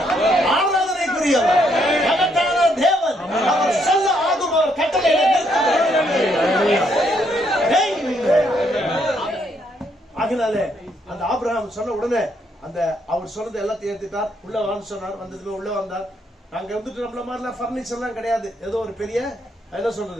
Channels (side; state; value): both; normal; correlation 0.73